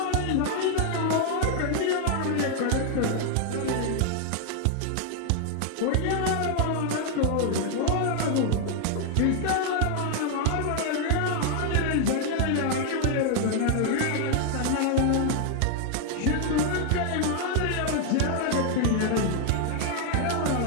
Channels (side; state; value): both; different; correlation 0.00